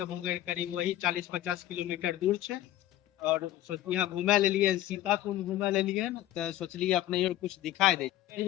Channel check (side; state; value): right; quieter; 13.8 dB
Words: मुंगेर करीब वही 40-50 किलोमीटर दूर है। और यहाँ घूमे ले लिए, सीता कुंड घूमे ले लिए न, तो सोचलिए अपने और कुछ दिखाई दे।